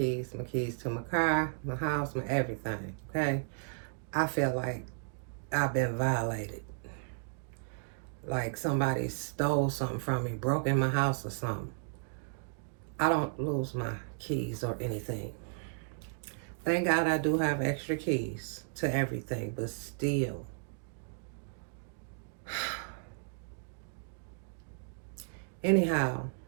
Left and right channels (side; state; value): left; silent; digital silence